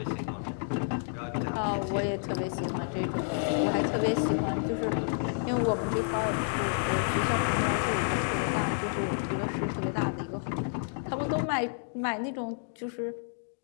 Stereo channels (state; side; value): silent; right; digital silence